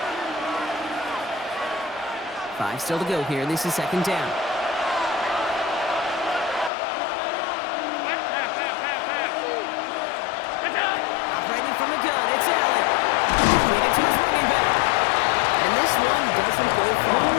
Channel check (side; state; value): right; drops out; at 6.7 s